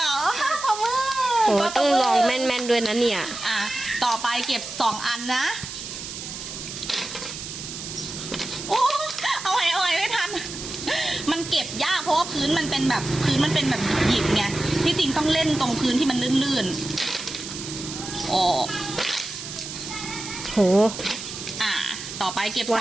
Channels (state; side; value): noise; right; hiss, 9 dB below the sound